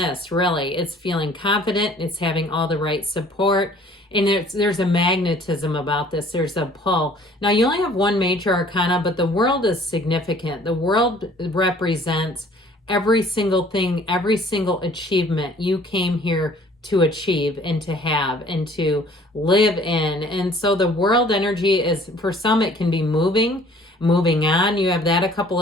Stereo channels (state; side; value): normal; both; correlation 0.54